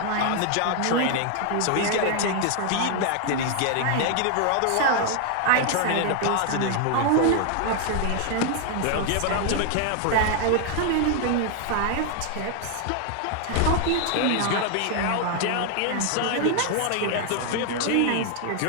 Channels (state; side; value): different; both; correlation 0.00